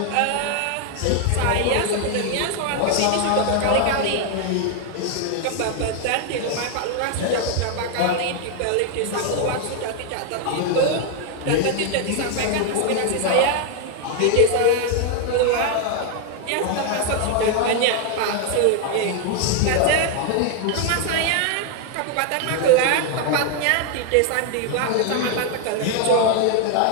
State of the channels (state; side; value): different; both; correlation 0.01